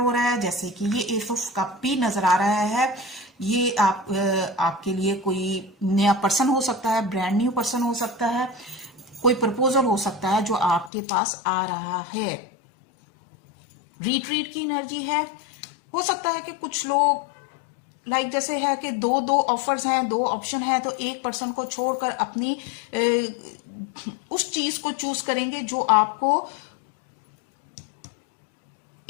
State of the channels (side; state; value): right; drops out; at 10.9 s